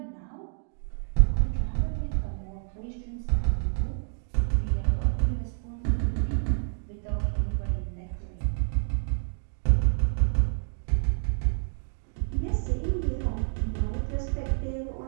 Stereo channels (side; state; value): left; silent; digital silence